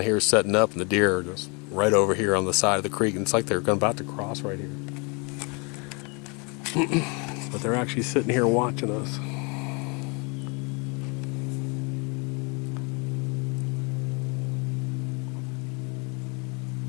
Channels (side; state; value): right; quieter; 32.2 dB